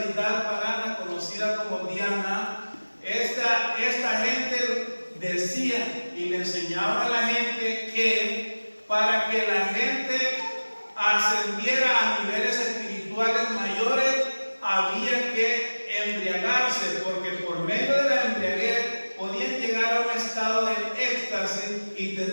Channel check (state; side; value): inverted; both; correlation -1.00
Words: pagana conocida como Diana, esta gente decía y le enseñaba a la gente que para que la gente ascendiera a niveles espirituales mayores había que embriagarse, porque por medio de la embriaguez podían llegar a un estado de éxtasis y